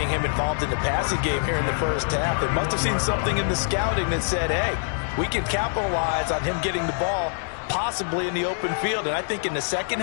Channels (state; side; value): silent; right; digital silence